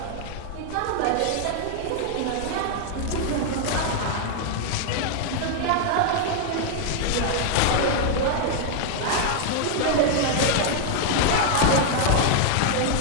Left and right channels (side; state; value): both; different; correlation 0.00